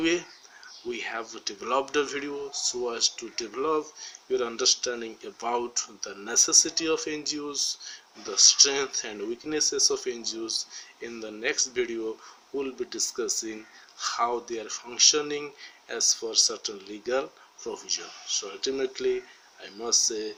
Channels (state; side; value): identical; both; correlation 1.00